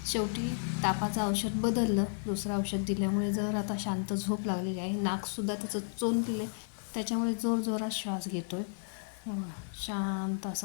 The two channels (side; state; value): right; silent; 56 dB below the other